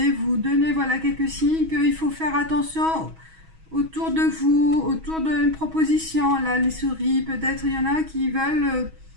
vous donner, voilà, quelques signes qu'il faut faire attention autour de vous, autour d'une proposition. Là, les souris, peut-être il y en a qui veulent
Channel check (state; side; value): late; left; 6.2 ms